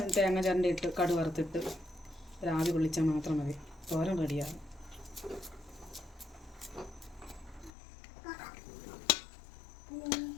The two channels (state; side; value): drops out; right; at 7.7 s